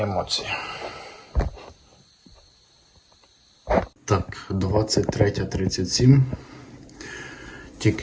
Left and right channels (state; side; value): identical; both; correlation 1.00